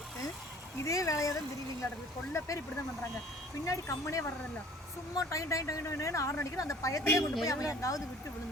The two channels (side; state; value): both; normal; correlation 0.51